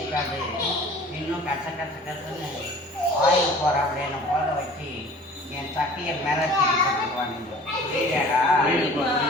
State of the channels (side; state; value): both; normal; correlation 0.46